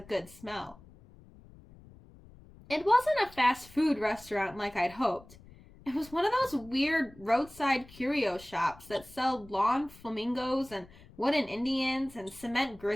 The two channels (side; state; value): left; noise; rumble, 22 dB below the sound